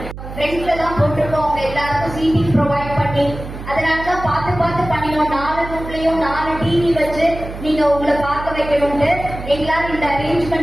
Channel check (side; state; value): right; noise; hum, 11 dB below the sound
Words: friends எல்லாம் போட்டுருக்கோம் அவங்க எல்லாருக்கும் CD provide பண்ணி அதனாலதான் பார்த்து பண்ணினோம் 4 ரூம்லயும் 4 TV வச்சு நீங்க உங்களை பார்க்க வைக்கணும்ட்டு எங்களால இந்த